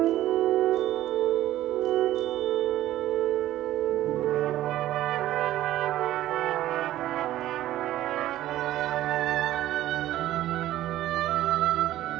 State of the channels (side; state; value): left; quieter; 14.1 dB